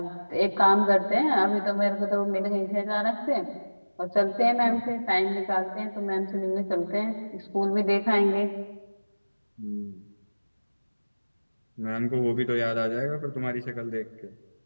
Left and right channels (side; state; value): both; inverted; correlation -1.00